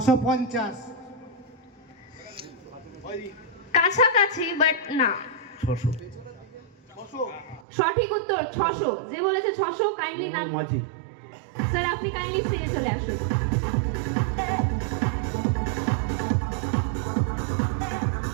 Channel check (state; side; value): drops out; left; at 7.6 s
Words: কাছাকাছি বাট না। 600। সঠিক উত্তর 600। যে বলেছে 600 কাইন্ডলি নাম। মাঝি। স্যার আপনি কাইন্ডলি স্টেজে চলে আসুন।